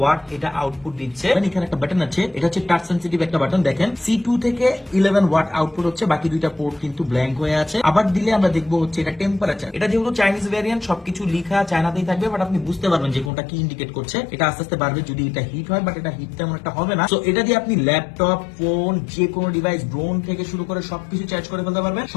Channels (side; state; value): right; drops out; at 13.3 s